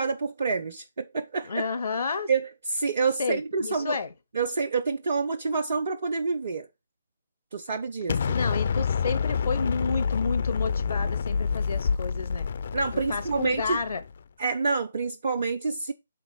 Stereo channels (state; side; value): inverted; both; correlation -0.76